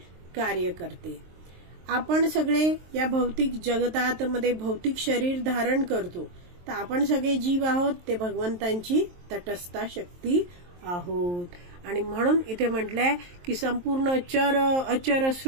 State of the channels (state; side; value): late; left; 23 ms